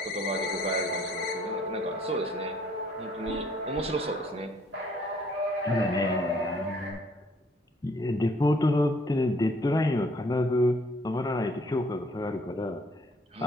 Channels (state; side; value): normal; both; correlation 0.62